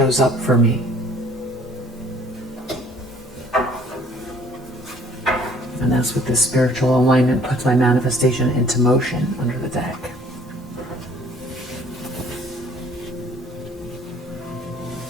up for me. And that's what this spiritual alignment puts my manifestation into motion under the deck.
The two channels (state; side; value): normal; both; correlation 0.56